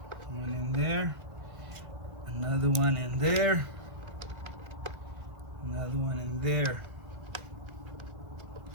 One in there. Another one in there. Another one in there.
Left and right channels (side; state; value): left; late; 1.5 ms